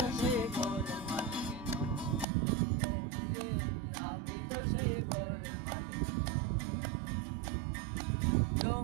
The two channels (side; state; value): left; drops out; at 2.2 s